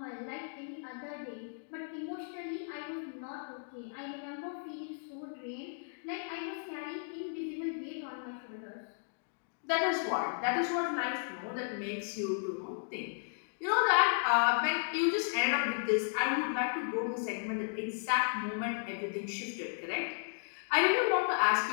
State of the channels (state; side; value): silent; right; digital silence